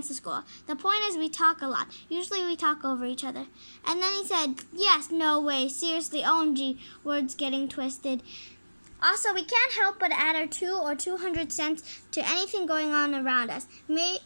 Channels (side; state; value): both; inverted; correlation -1.00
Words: to school. The point is we talk a lot. Usually we talk over each other. And then he said, yes, no way, seriously, OMG, words getting twisted. Also, we can't help but add our 2 or 200 cents to anything going on around us. Maya